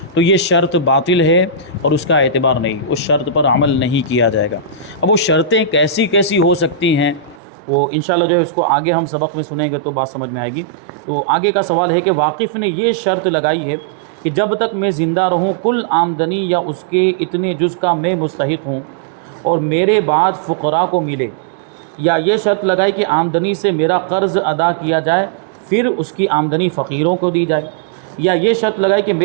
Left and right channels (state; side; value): drops out; left; at 7.4 s